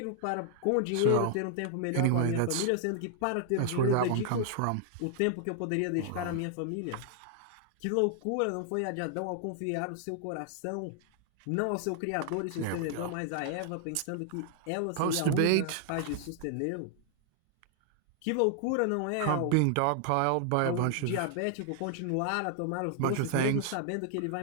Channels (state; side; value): different; both; correlation 0.00